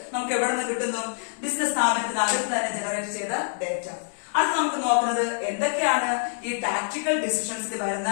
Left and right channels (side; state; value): right; silent; 61 dB below the other